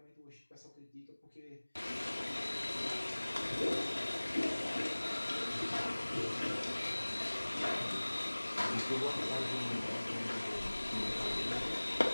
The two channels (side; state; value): both; inverted; correlation -1.00